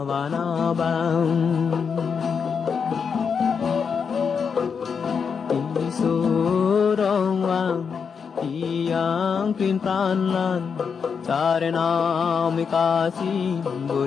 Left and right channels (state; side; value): quieter; right; 6.2 dB